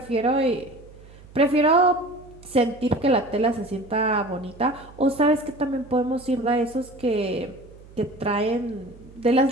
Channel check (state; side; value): noise; right; hum, 22 dB below the sound